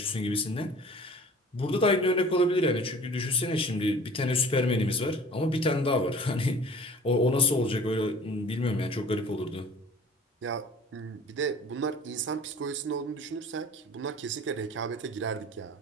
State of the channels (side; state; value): both; normal; correlation 0.45